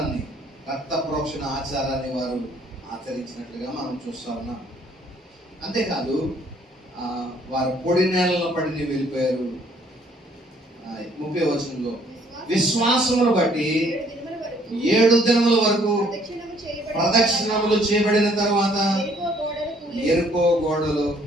రక్త ప్రోక్షణ ఆచారాన్ని వారు ఆచరించినట్లుగా మనం చూస్తా ఉన్నాం. అంతేకాదు వారు పొడి నేలలో పడి వెళ్ళిపోయారు. 30వ వచనంలో విశ్వాసమును బట్టి 7 దినముల వరకు ప్రదక్షిణములు చేయబడిన తర్వాత ఎరుకో గోడలు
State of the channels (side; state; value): both; normal; correlation 0.63